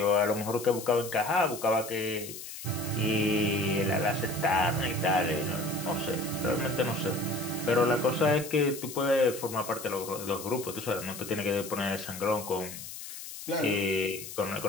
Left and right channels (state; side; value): noise; left; hiss, 11 dB below the sound